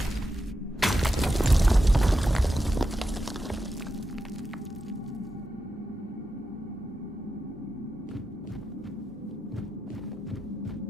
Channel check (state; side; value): normal; both; correlation 0.88